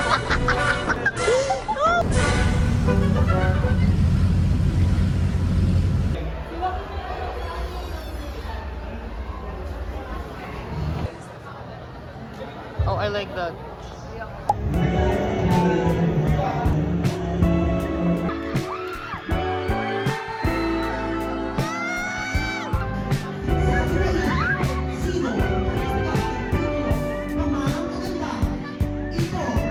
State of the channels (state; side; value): identical; both; correlation 1.00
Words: Oh, I like that.